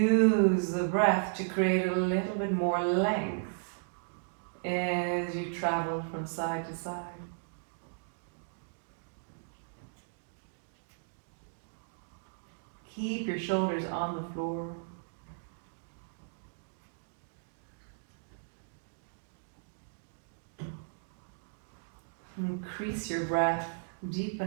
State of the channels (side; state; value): left; silent; digital silence